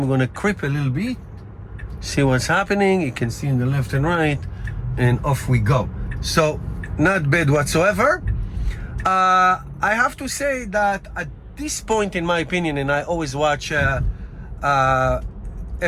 going to creep a little bit, see what's happening. You can see in the left and right, and off we go. So not bad whatsoever. I have to say that at this point, in my opinion, and I always watch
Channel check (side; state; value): both; identical; correlation 1.00